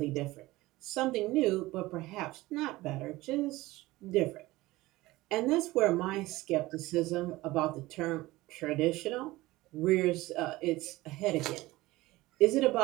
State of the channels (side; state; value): left; quieter; 19.0 dB